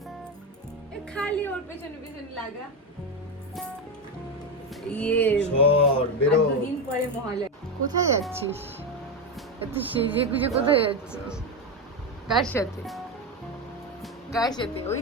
খালি ওর পেছনে লাগা। দুদিন পরে মহালয়া। কোথায় যাচ্ছিস? এত সেজে গুজে কোথায় যাচ্ছিস? কার সাথে? ওই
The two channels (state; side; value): normal; both; correlation 0.12